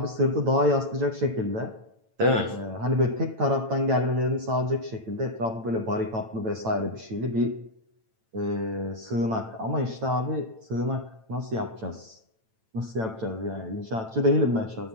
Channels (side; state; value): left; late; 9.0 ms